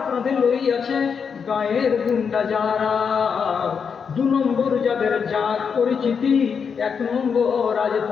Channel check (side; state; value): right; quieter; 6.3 dB